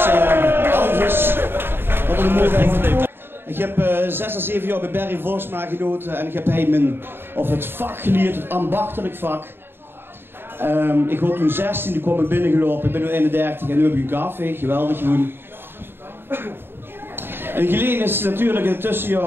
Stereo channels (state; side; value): late; left; 0.11 ms